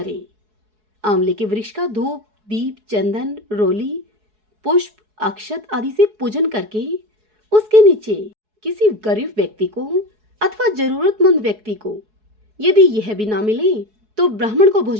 आंवले के वृक्ष का धूप, दीप, चंदन, रोली, पुष्प, अक्षत आदि से पूजन करके उसके नीचे किसी गरीब व्यक्ति को अथवा जरूरतमंद व्यक्ति को, यदि यह भी ना मिले तो ब्राह्मण को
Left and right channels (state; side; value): late; left; 4.7 ms